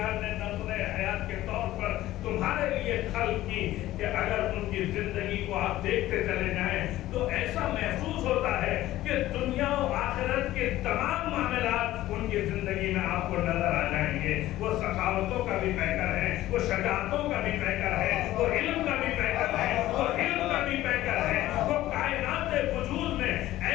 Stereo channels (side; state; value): right; quieter; 15.2 dB